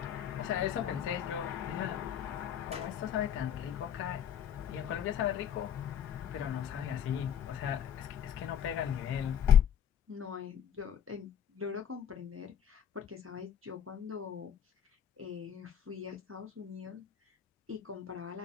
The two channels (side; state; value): right; quieter; 9.0 dB